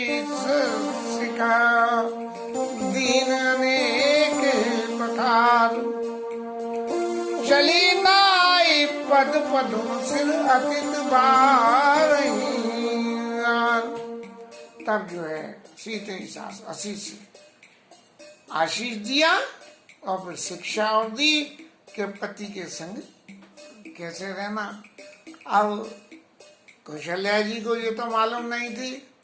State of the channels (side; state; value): both; identical; correlation 1.00